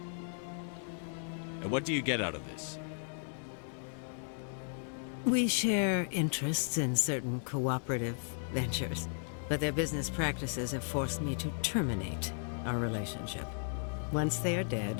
And what do you get out of this? We share interests in certain cooperative ventures, but their business practices have forced me to terminate our relationship. Once they are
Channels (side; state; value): right; silent; 54 dB below the other